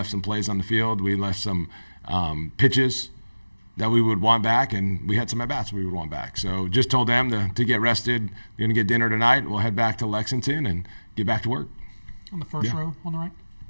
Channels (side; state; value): both; inverted; correlation -1.00